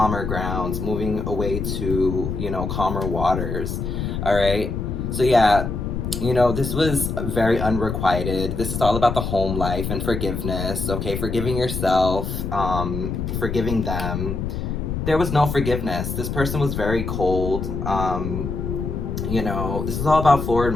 grounds, moving away to, calmer waters, all right? So yeah, this was very unrequited. This is all about the home life and forgiveness, okay? Forgiving yourself, forgiving them. There was no forgiveness. This person was very cold. This is all about forward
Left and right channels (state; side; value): noise; left; rumble, 3 dB below the sound